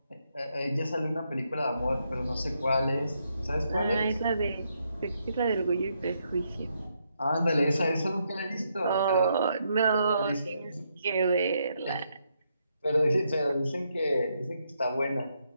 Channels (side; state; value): both; inverted; correlation -0.78